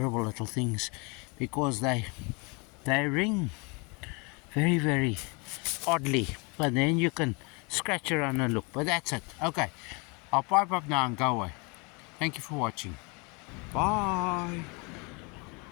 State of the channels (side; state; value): right; quieter; 30.6 dB